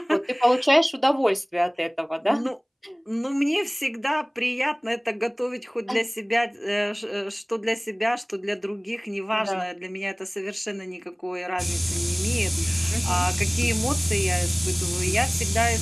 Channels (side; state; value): both; identical; correlation 1.00